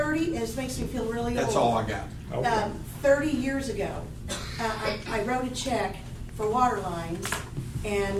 and this makes me feel really old. That's all I got. Okay. 30 years ago, I wrote a check for water lines,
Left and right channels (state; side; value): identical; both; correlation 1.00